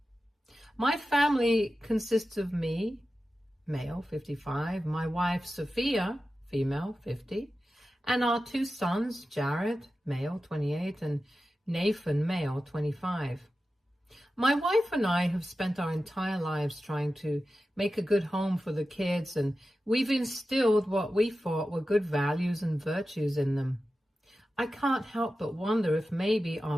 My family consists of me, male, 55, my wife, Sophia, female, 50, and our two sons, Jared, male, 28, and Nathan, male, 25. My wife and I have spent our entire lives trying to make a good home for the kids, and we've instilled what we thought were good values and virtues in them. I can't help but wonder if maybe our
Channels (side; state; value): both; normal; correlation 0.93